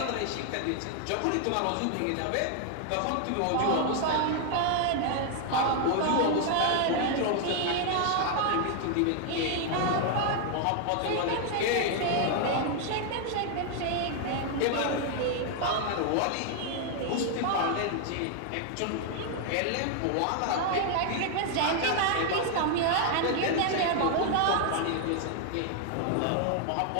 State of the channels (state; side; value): different; both; correlation 0.00